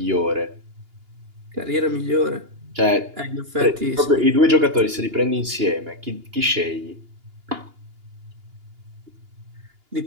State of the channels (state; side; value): late; left; 2.9 ms